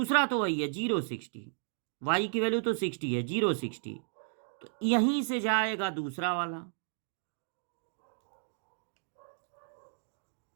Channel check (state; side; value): silent; left; digital silence